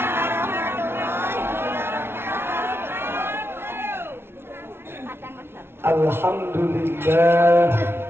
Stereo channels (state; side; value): late; left; 0.12 ms